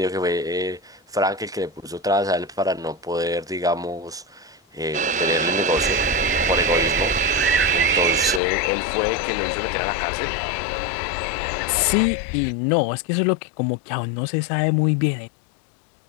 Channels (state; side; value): drops out; right; at 8.4 s